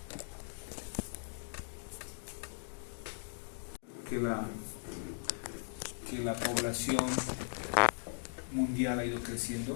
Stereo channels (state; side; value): silent; right; digital silence